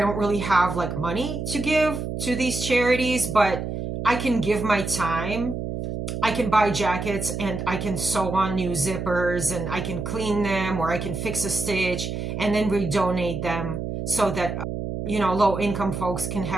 really have like money to give to these charities, but I can give my time. I can buy jackets and I can sew on new zippers and I can clean them, or I can fix a stitch and then redonate them so that, low income folks can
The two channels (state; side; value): noise; right; hum, 4 dB below the sound